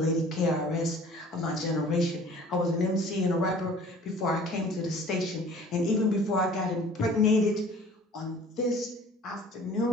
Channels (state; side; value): normal; both; correlation 0.49